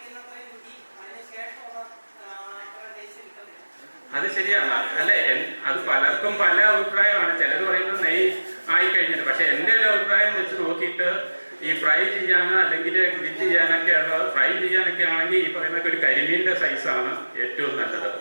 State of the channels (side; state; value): both; inverted; correlation -1.00